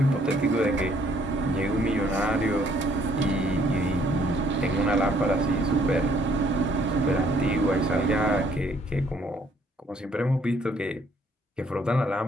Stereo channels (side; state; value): both; normal; correlation 0.65